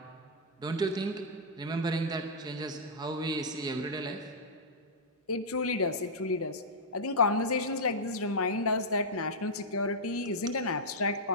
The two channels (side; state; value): both; normal; correlation -0.08